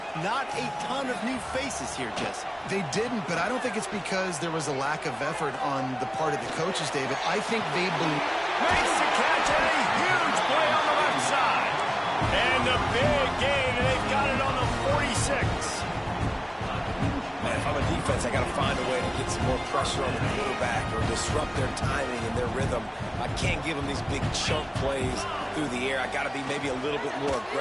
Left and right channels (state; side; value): identical; both; correlation 1.00